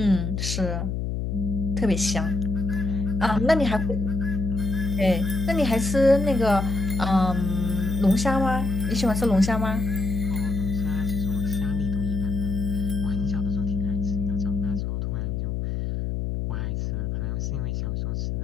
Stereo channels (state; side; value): noise; left; hum, 2 dB below the sound